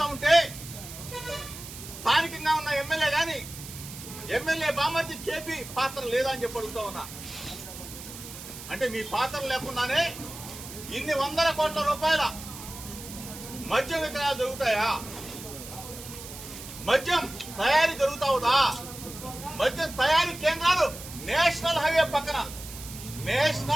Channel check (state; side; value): noise; right; hiss, 13 dB below the sound